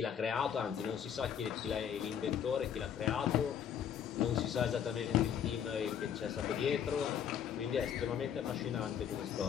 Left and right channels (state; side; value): quieter; right; 8.6 dB